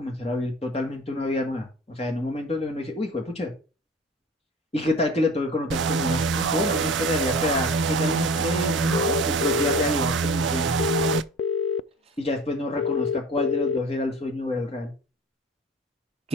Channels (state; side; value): normal; both; correlation 0.38